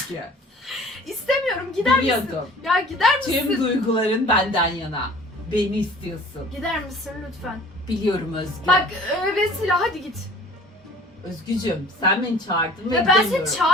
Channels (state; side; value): normal; both; correlation 0.48